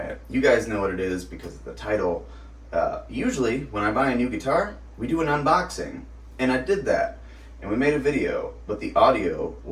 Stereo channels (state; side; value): identical; both; correlation 1.00